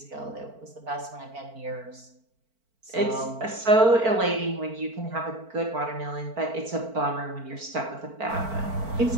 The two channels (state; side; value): late; left; 4.5 ms